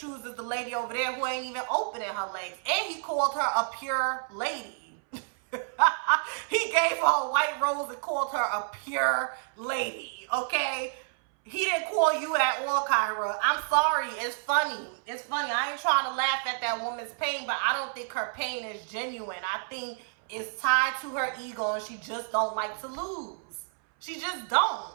the lady over there who ain't even opening her legs. And he called her a pure lady. He gave her a white rose and called her a pure lady, okay? He didn't call you at all, KYRA. I'm sorry. It's funny. It's funny. I ain't trying to laugh at that woman's pain, but I don't think her pain is genuine. I think it's tied to her ego and she just don't like to lose. She just don't.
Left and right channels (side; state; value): left; silent; 58 dB below the other